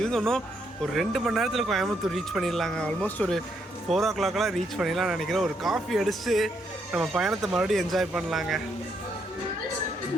இன்னும் ஒரு 2 மணி நேரத்தில் கோயம்புத்தூர் ரீச் பண்ணிடலாங்க. ஆல்மோஸ்ட் ஒரு 4 o'clock ரீச் பண்ணிடலாம்னு நினைக்கிறேன். ஒரு காஃபி அடிச்சுட்டு நம்ம பயணத்தை மறுபடியும் என்ஜாய் பண்ணலாங்க.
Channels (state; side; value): normal; both; correlation 0.75